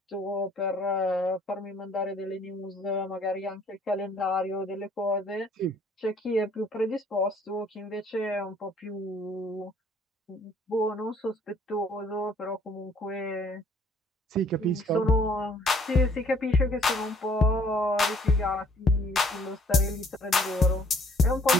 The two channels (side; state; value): both; normal; correlation 0.60